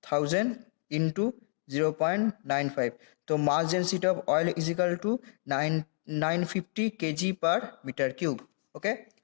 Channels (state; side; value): silent; right; digital silence